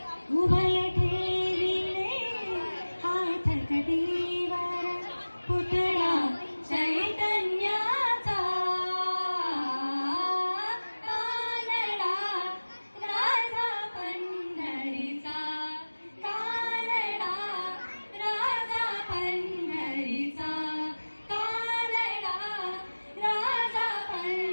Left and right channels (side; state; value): both; inverted; correlation -1.00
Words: उभय ठेविले हात कटीवर पुतळा चैतन्याचा कानडा राजा पंढरीचा कानडा राजा पंढरीचा कानडा राजा